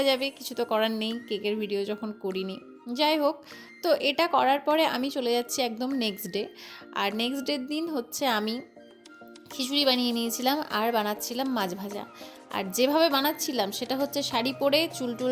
যাবে, কিছু তো করার নেই, কেকের ভিডিও যখন করিনি। যাই হোক, তো এটা করার পরে আমি চলে যাচ্ছি একদম নেক্সট ডে। আর নেক্সট ডের দিন হচ্ছে আমি খিচুড়ি বানিয়ে নিয়েছিলাম আর বানাচ্ছিলাম মাছ ভাজা। আর যেভাবে বানাচ্ছিলাম সেটা হচ্ছে শাড়ি পরে, চুল টুল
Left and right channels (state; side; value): identical; both; correlation 1.00